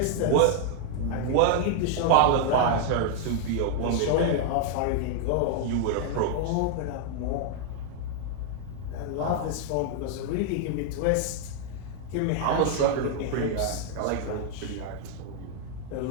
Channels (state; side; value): different; both; correlation -0.01